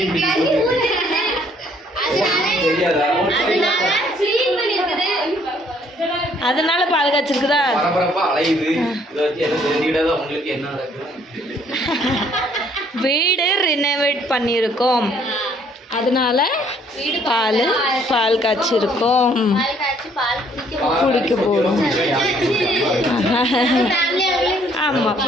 அதனால பால் காய்ச்சிருக்குதா? வீடு ரினோவேட் பண்ணியிருக்கோம், அதனால பால் காய்ச்சிருக்கோம், குடிக்க போகிறோம். ஆமாம்,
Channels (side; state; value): both; normal; correlation 0.63